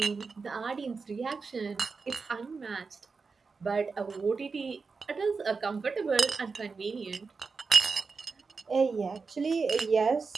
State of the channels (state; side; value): quieter; left; 4.7 dB